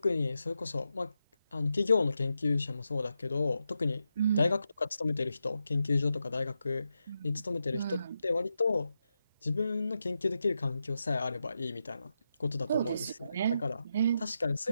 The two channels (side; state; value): both; inverted; correlation -0.87